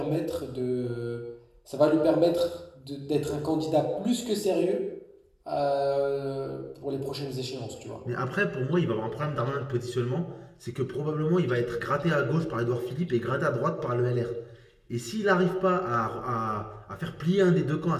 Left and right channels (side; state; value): both; identical; correlation 1.00